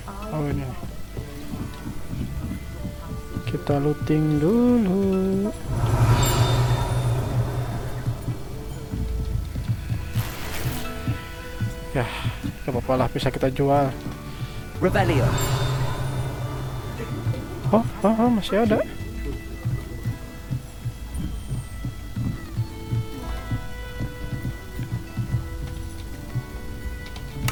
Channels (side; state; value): both; identical; correlation 1.00